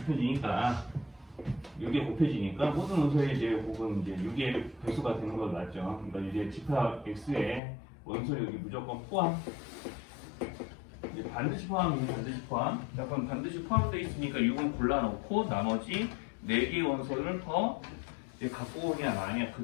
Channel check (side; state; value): right; drops out; at 7.6 s